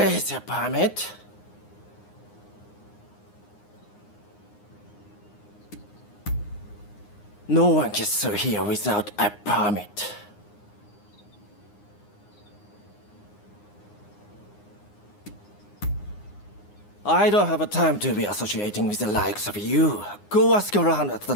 the permit? No one gets through here without a permit. I don't have a time to be associating with the likes of you. Go ask around at the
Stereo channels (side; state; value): right; late; 9.7 ms